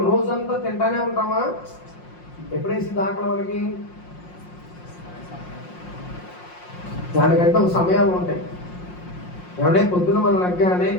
రోజంతా తింటానే ఉంటామా? ఎప్పుడేసింది ఆకలి మనకి? దానికంటే ఒక సమయాలు ఉంటాయి. ఏమంటే పొద్దున మనం లగ్గానే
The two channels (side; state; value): right; late; 5.6 ms